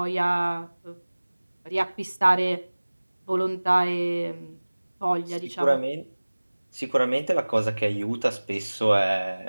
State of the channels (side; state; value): both; inverted; correlation -1.00